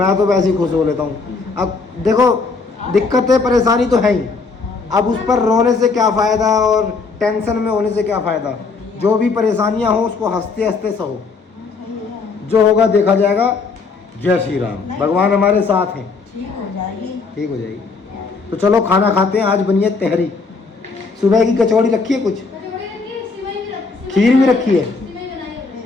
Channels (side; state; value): right; quieter; 4.4 dB